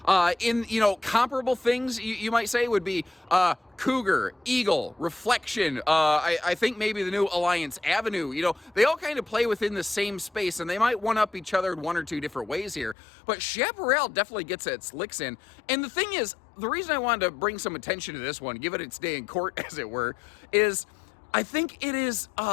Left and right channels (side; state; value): right; drops out; at 13.0 s